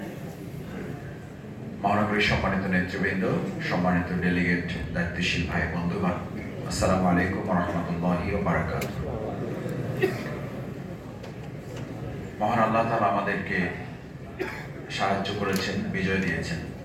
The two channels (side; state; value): both; identical; correlation 1.00